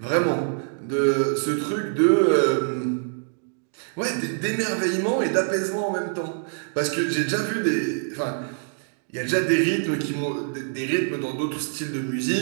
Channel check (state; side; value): silent; left; digital silence